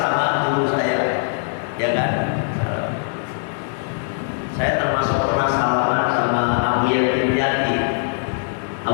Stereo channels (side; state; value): right; silent; digital silence